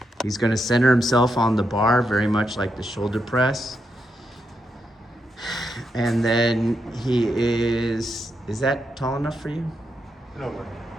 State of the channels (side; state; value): both; normal; correlation 0.83